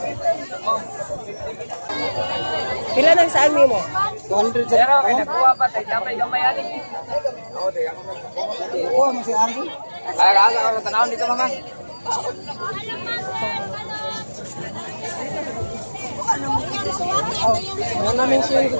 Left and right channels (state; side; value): inverted; both; correlation -1.00